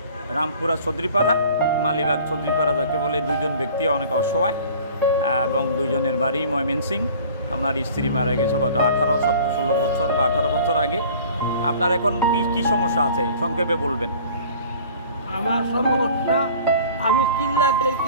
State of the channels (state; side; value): inverted; both; correlation -0.47